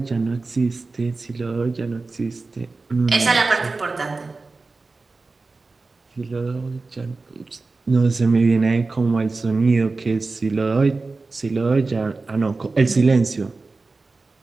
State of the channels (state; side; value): quieter; left; 3.7 dB